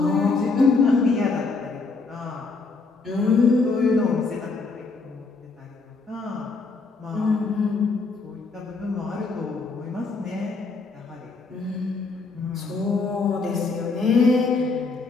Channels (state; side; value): quieter; right; 4.0 dB